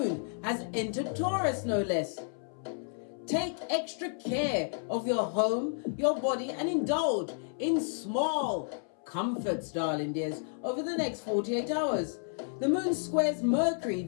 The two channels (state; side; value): silent; right; 57 dB below the other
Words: has entered Taurus, no less. Take extra care of your home, your body, and indulge in small comforts, darling dears, over the next 48 hours. The moon squares Mercury,